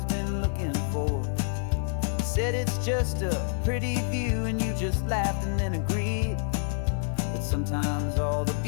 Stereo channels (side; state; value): right; silent; 60 dB below the other